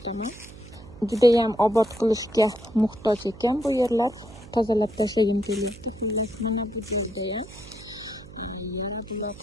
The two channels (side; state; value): right; noise; hum, 18 dB below the sound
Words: Juda ham obod qilishga muhtoj ekan bu yerlar. Tozalab tashlagim keldi. Xullas mana bu yerda ham yara